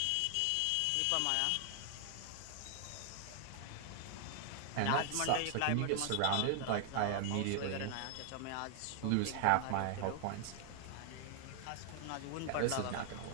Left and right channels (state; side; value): different; both; correlation 0.00